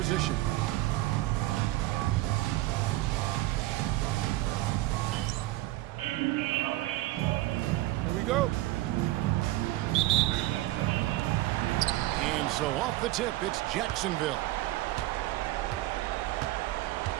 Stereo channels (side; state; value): left; quieter; 17.3 dB